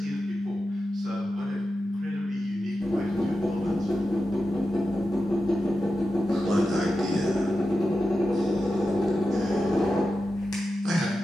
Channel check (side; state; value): both; normal; correlation 0.91